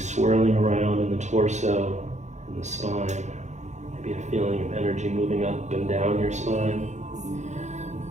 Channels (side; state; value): left; late; 0.34 ms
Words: around in the torso and the spine, maybe a feeling of energy moving up and down your spine.